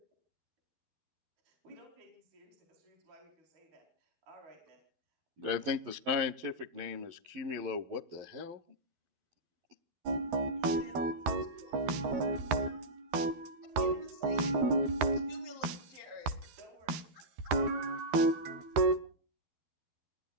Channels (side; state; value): left; late; 13 ms